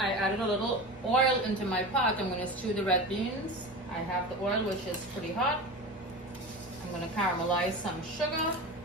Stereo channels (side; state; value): both; normal; correlation 0.28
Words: added a little oil into my pot. I'm going to stew the red beans. I have the oil, which is pretty hot. I'm going to caramelize some sugar.